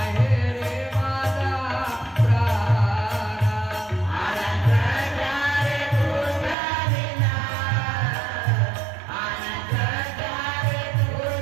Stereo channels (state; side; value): drops out; left; at 6.6 s